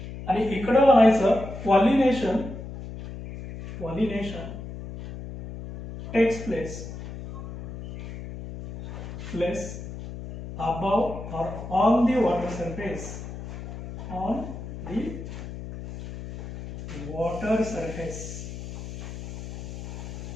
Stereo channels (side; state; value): left; noise; hum, 10 dB below the sound